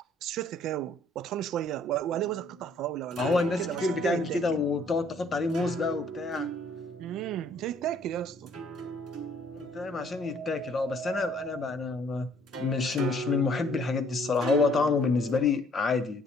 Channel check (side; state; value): both; normal; correlation 0.60